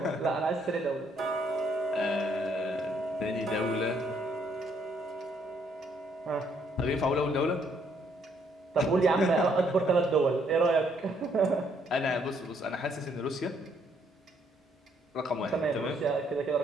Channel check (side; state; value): both; normal; correlation 0.69